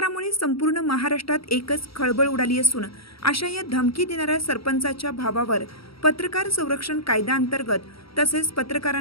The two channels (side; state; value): right; late; 0.75 ms